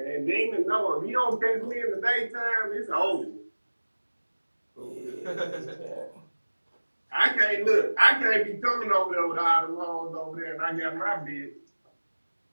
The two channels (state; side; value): inverted; both; correlation -1.00